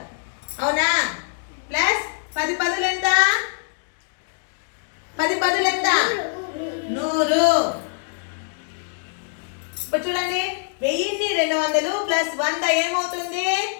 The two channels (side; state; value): right; silent; 63 dB below the other